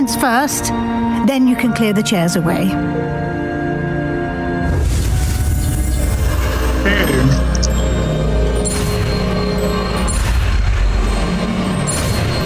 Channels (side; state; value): both; identical; correlation 1.00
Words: first, then you can clear the chairs away.